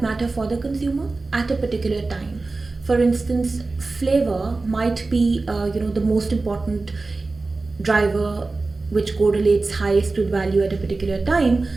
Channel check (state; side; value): quieter; left; 3.6 dB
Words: matter for the consumer at a particular time. For instance, flavor might be the most important driver which correlates highest with value at a particular time.